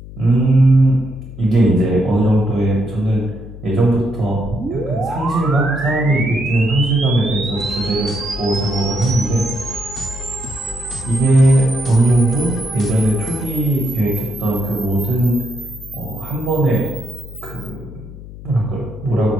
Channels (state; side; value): noise; left; hum, 15 dB below the sound